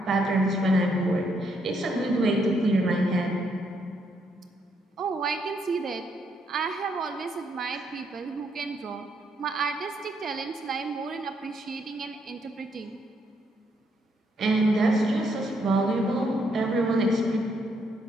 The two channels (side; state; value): both; normal; correlation 0.74